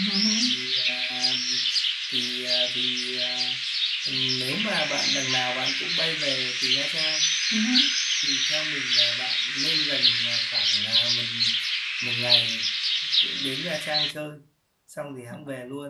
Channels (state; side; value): identical; both; correlation 1.00